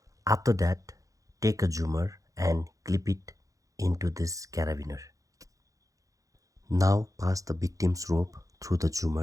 After that, take a zoomer and clip it into this carabiner. Now pass the victim's rope through the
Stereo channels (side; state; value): left; late; 0.16 ms